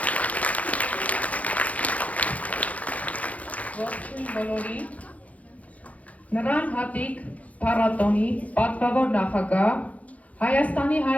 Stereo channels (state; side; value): late; right; 0.068 ms